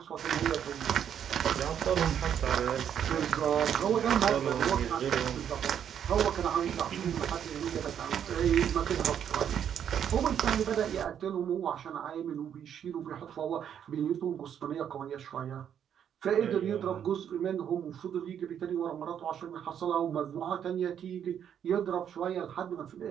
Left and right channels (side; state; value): left; quieter; 9.0 dB